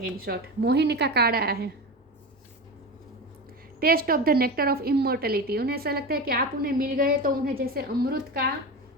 इन शॉर्ट, मोहिनी का कार्ड आया है, taste of the nectar of immortality. उन्हें ऐसा लगता है कि आप उन्हें मिल गए तो उन्हें जैसे अमृत का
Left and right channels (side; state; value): both; normal; correlation 0.24